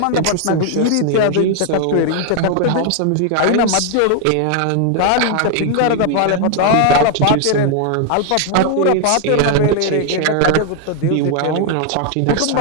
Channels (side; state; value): both; different; correlation 0.00